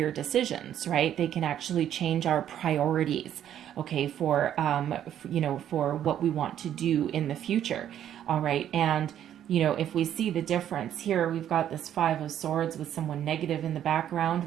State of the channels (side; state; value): left; quieter; 10.5 dB